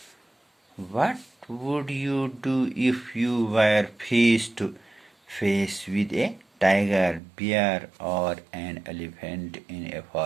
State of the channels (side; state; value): left; drops out; at 7.2 s